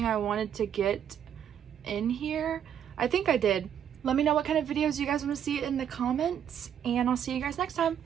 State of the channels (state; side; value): quieter; left; 9.1 dB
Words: I wanted to get in here. I think I did. Let me know what kind of videos you guys want to see in the comments and I'll see you guys next time.